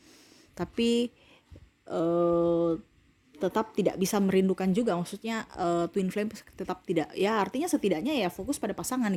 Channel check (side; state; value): both; identical; correlation 1.00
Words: tapi tetap tidak bisa merindukan juga, maksudnya twin flame tetap tidak, ya artinya setidaknya ya fokus pada pasangan